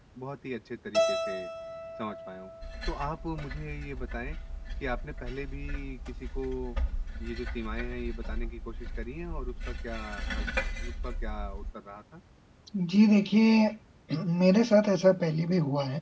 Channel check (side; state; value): both; identical; correlation 1.00